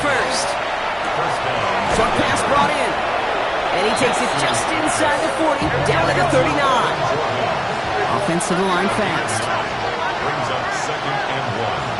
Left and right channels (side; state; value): both; identical; correlation 1.00